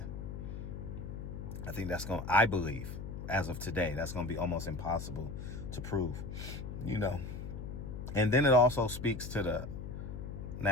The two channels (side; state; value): left; noise; hum, 7 dB below the sound